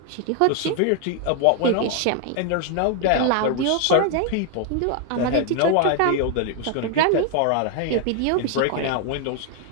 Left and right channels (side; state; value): both; different; correlation 0.00